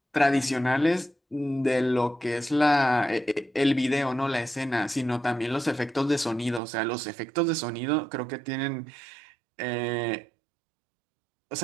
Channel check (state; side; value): drops out; left; at 6.6 s